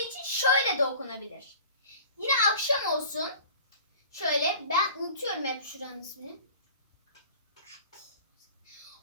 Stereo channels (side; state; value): both; inverted; correlation -0.43